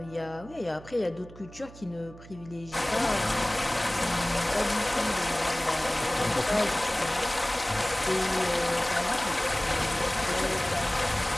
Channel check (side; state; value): right; noise; hum, 18 dB below the sound